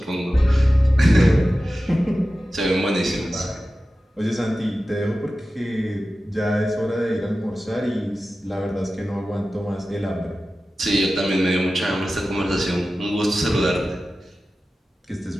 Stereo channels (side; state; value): both; normal; correlation 0.95